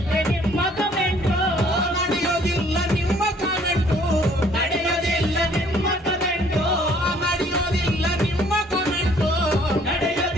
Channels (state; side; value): normal; both; correlation 0.60